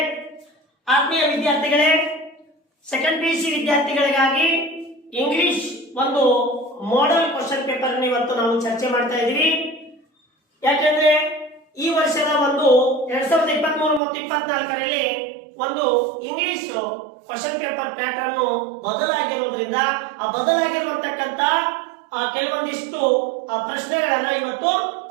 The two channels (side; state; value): left; drops out; at 14.0 s